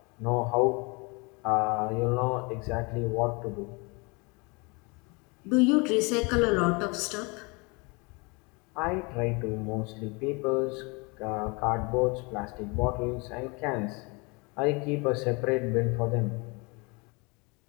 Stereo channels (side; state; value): right; quieter; 29.1 dB